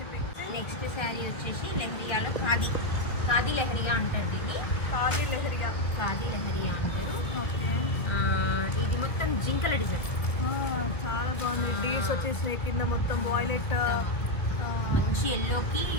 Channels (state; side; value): late; right; 1.6 ms